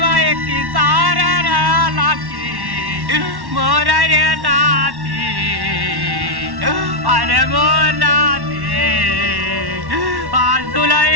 एक सारा लाकी मोरा रे नाती अरे मोर नाती आज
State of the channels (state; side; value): late; left; 1.1 ms